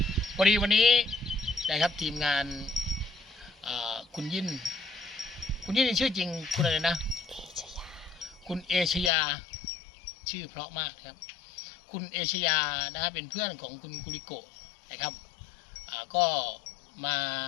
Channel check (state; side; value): drops out; right; at 9.1 s